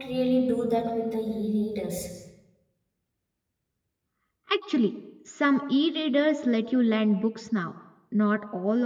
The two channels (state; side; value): identical; both; correlation 1.00